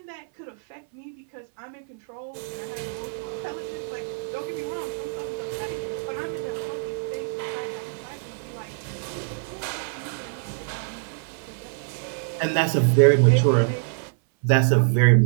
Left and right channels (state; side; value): silent; left; 61 dB below the other